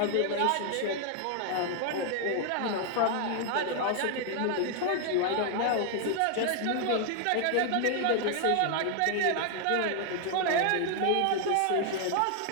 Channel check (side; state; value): both; different; correlation 0.00